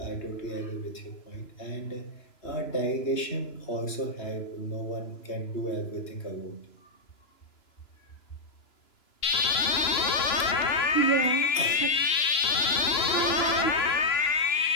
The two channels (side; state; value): right; late; 2.9 ms